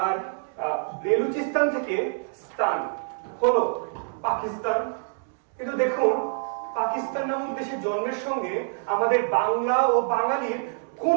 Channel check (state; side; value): silent; left; 61 dB below the other